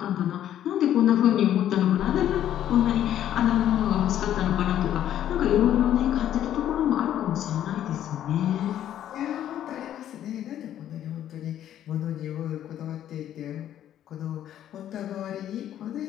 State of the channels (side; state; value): right; quieter; 11.2 dB